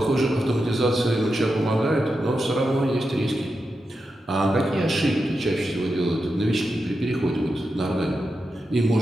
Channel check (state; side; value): normal; both; correlation 0.88